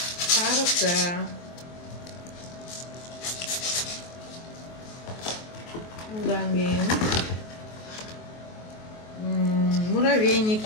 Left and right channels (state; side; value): late; right; 23 ms